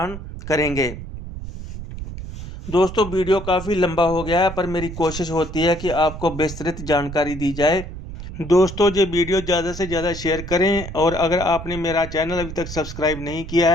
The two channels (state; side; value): noise; right; rumble, 10 dB below the sound